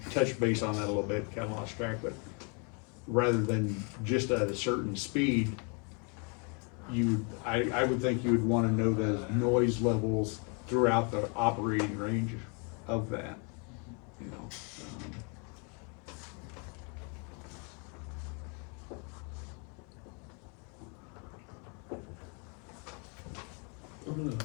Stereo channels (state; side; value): quieter; right; 35.5 dB